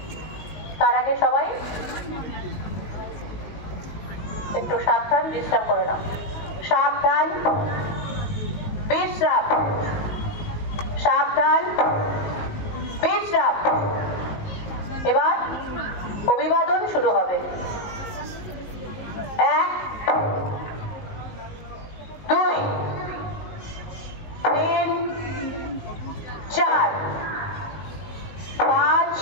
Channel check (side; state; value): right; late; 19 ms